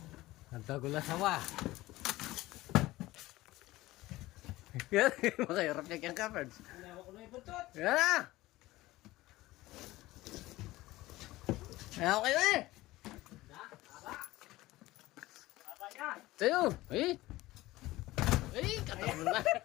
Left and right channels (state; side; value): quieter; right; 18.0 dB